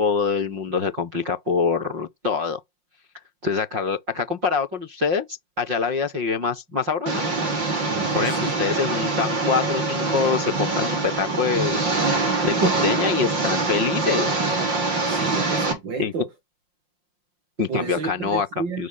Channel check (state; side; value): late; left; 5.7 ms